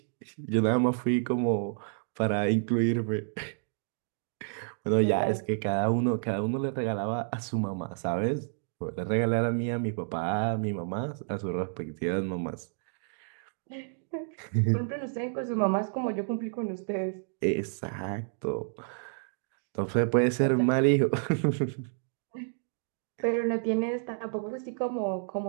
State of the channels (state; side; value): silent; left; digital silence